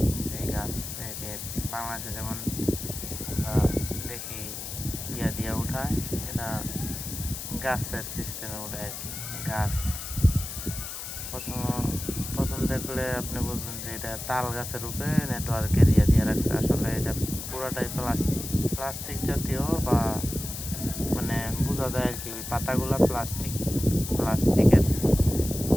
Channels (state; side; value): noise; left; hiss, 8 dB below the sound